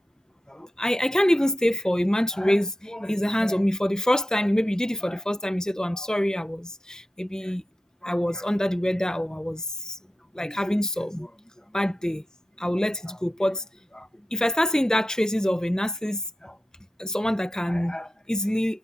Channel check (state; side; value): normal; both; correlation 0.92